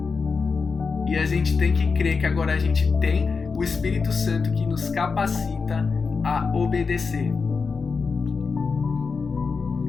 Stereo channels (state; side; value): quieter; right; 4.9 dB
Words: E a gente tem que crer que agora a gente tem o Espírito Santo que nos capacita a obedecer.